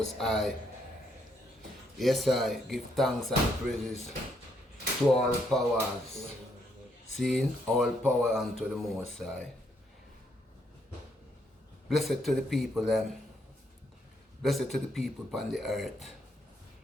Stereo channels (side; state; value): both; normal; correlation 0.74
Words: High. Yes, I give thanks and praises to all powers. Seeing all power unto the Most High. Blessed to the people, them. Blessed to the people upon the earth.